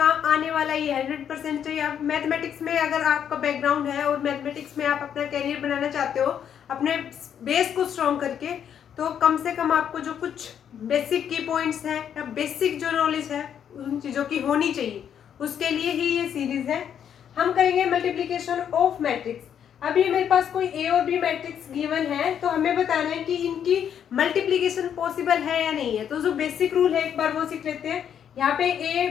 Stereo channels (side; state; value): right; quieter; 8.8 dB